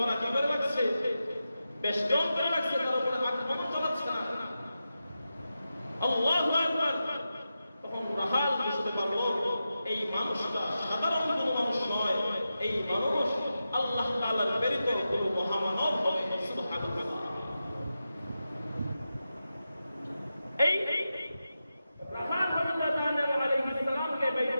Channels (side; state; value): both; inverted; correlation -0.91